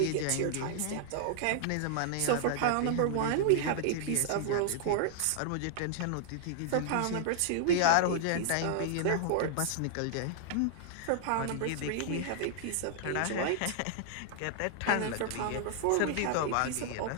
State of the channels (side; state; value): both; different; correlation -0.01